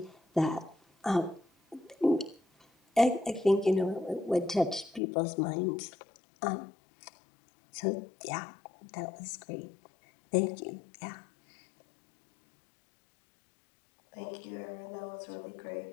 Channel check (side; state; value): right; drops out; at 5.0 s